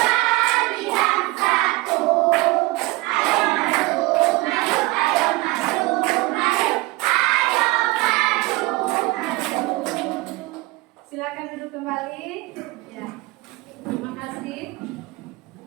Silakan duduk kembali. Ya. Terima kasih.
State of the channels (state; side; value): quieter; left; 22.0 dB